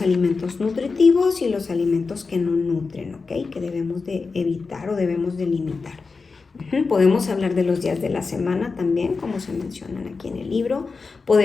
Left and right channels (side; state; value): right; quieter; 4.5 dB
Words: alimentos nutritivos y los alimentos que no nutren, ¿ok? Que debemos de evitar o debemos de limitar. Podemos hablar de los días de la semana también, como se mencionan aquí en el libro.